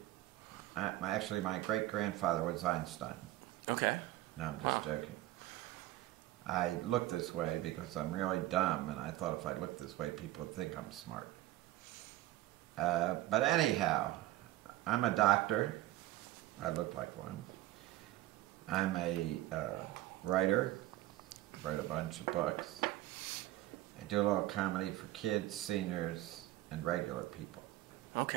Actually, my great-grandfather was Einstein. Okay. No, I'm just joking. I look this way because I'm really dumb, and I thought if I looked this way, people would think I'm smart. But anyhow, I'm a doctor. I look like one. I'm a writer. Wrote a bunch of books. I do a little comedy for kids, seniors, and regular people.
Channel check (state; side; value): quieter; left; 15.8 dB